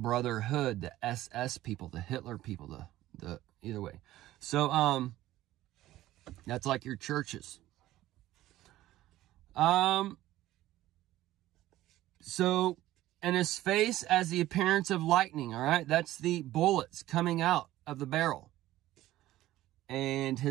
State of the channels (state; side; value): quieter; left; 15.2 dB